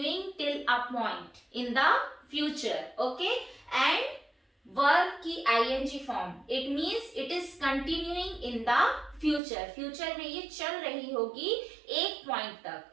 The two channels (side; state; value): left; drops out; at 9.4 s